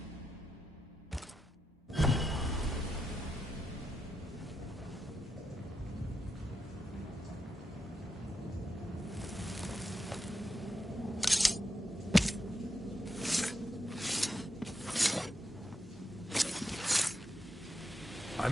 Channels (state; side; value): normal; both; correlation 0.85